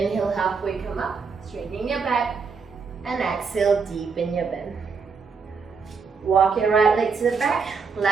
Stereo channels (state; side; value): quieter; left; 5.2 dB